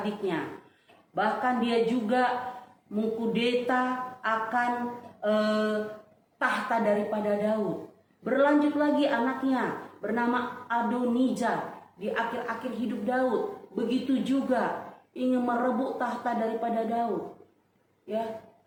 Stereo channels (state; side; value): identical; both; correlation 1.00